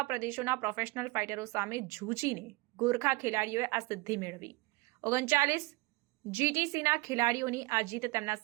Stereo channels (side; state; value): left; quieter; 22.5 dB